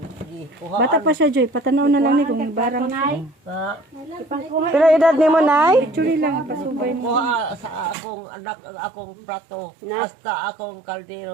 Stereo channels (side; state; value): left; drops out; at 8.0 s